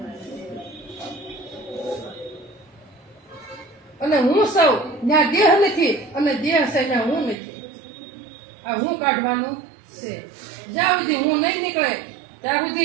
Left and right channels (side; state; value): left; drops out; at 7.4 s